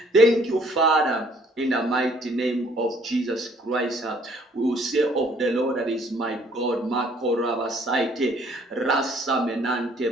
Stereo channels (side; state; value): both; normal; correlation 0.60